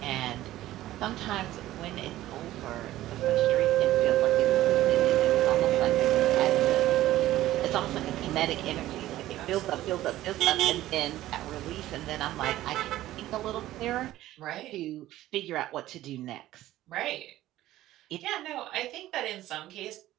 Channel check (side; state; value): left; quieter; 14.9 dB